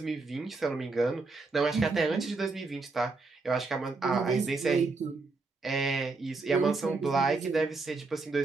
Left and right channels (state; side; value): quieter; left; 3.8 dB